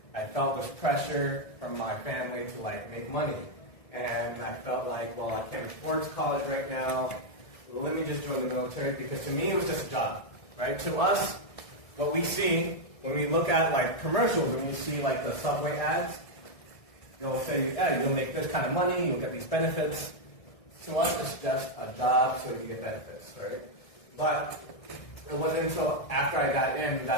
I felt this pressure from my family to make money. And I felt like, well, I can't afford college right now. Let me just join the military, because to me it was just a job, right? To us, what we see when we look at commercials, when we see the subway ads, they'll say, yeah, you'll make this kind of money, you'll get these benefits. To us, it's just a job so you get benefits, right? But it wasn't until after I got in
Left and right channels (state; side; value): late; right; 1.6 ms